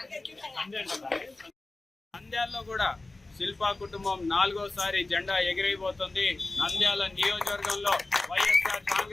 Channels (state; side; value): quieter; right; 3.1 dB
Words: నంద్యాలలో కూడా శిల్పా కుటుంబం 4వసారి జెండా ఎగిరైపోతుంది. నంద్యాల నియోజకవర్గంలో వైఎస్ఆర్